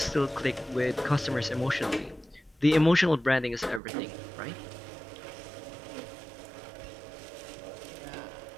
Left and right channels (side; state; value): left; drops out; at 3.8 s